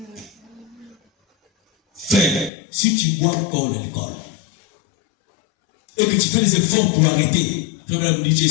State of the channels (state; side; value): drops out; right; at 2.5 s